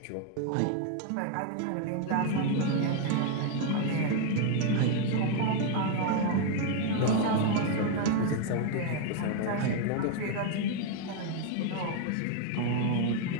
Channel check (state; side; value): different; both; correlation 0.00